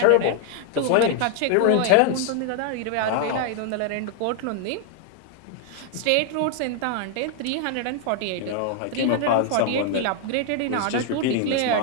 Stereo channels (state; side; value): different; both; correlation 0.00